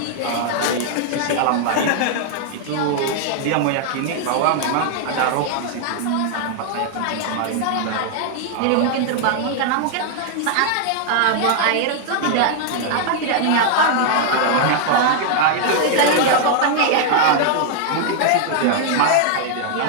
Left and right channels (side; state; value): both; different; correlation 0.00